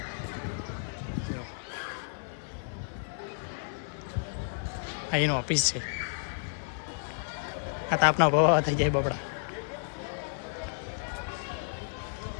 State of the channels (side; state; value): right; silent; 56 dB below the other